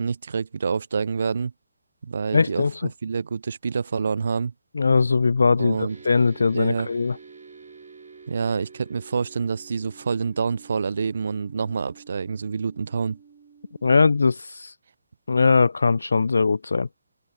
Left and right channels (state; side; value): inverted; both; correlation -0.90